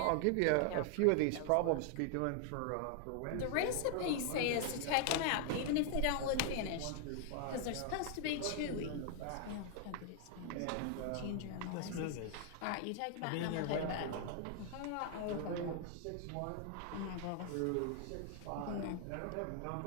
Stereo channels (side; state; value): both; different; correlation 0.00